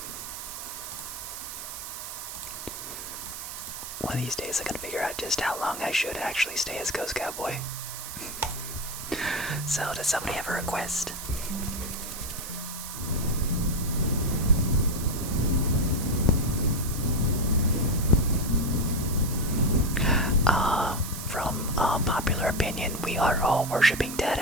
One of these days I can figure out just how long I should actually stay as Ghost Cowboy. So, does somebody have a request? From popular opinion, we are all worshipping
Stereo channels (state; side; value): noise; right; hiss, 9 dB below the sound